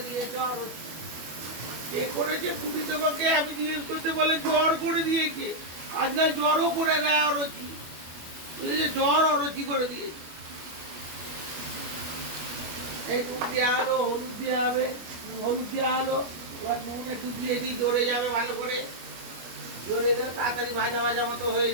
দিয়েছে অরুচি। এ করেছে ছুটি তোমাকে, আমি জিজ্ঞেস করতে বলে জ্বর করে দিয়েছে। আজকাল জ্বরও করে দেয় অরুচি, জ্বর অরুচি করে দিয়েছে। এই নুন দেওয়া হলো, হলুদ দেওয়া হবে, হলুদ দেওয়া হলো, এবার নুন একটু দিয়ে দিই, জড়ে যাবে ভালো করে, জড়ে গেলে তাড়াতাড়ি ভাজা ভাজা মতো হয়ে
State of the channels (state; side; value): late; left; 25 ms